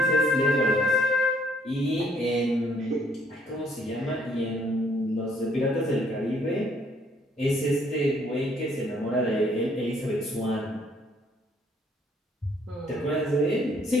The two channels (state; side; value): normal; both; correlation 0.65